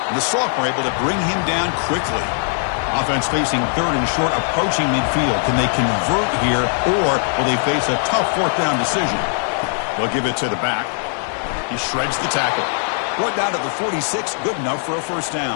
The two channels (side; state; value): right; silent; 66 dB below the other